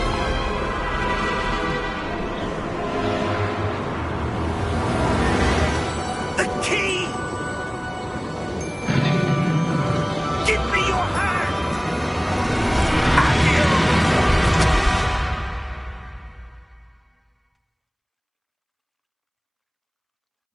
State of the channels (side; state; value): both; identical; correlation 1.00